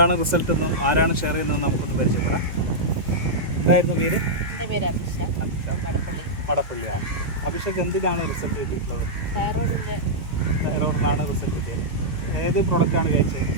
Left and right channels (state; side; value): late; left; 2.2 ms